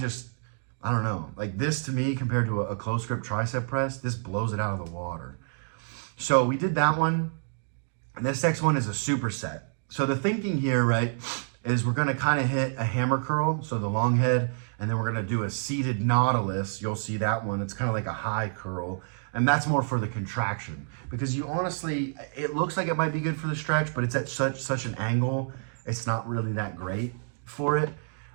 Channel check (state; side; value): silent; left; digital silence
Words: know, like this to me compared to a close grip tricep press, this blows it out of the water. So we did that one. And this next one is a superset. So the thinking here, right, is we're gonna kind of hit a hammer curl, so the long head, and then we're gonna do a seated nautilus. You'll see that one, it's kind of like a high curl, and that's more for the contraction. Because you honestly, it looks like it might be good for the stretch, but it's at such an angle, it's not really that great for it.